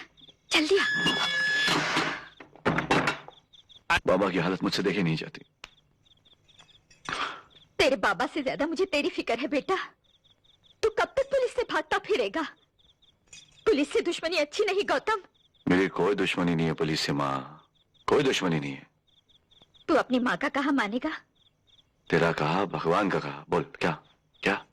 जल्दी आ। बाबा की हालत मुझसे देखी नहीं जाती। तेरे बाबा से ज्यादा मुझे तेरी फिक्र है बेटा। तू कब तक पुलिस से भागता फिरेगा? पुलिस से दुश्मनी अच्छी नहीं गौतम। मेरी कोई दुश्मनी नहीं है पुलिस से माँ, कोई दुश्मनी नहीं है। तू अपनी माँ का कहा मानेगा? तेरा कहा, भगवान का कहा, बोल क्या क्या?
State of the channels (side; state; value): both; identical; correlation 1.00